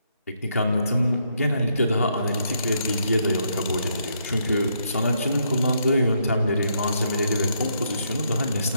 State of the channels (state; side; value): inverted; both; correlation -0.76